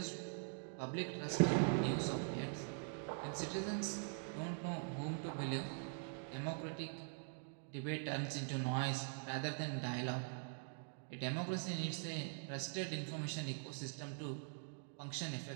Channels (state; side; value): silent; left; digital silence